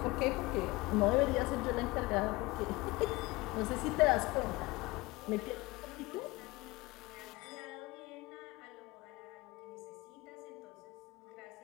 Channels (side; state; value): right; quieter; 22.1 dB